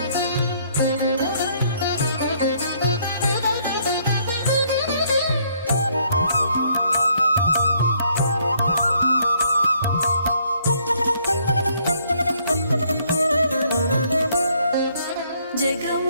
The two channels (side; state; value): both; inverted; correlation -0.67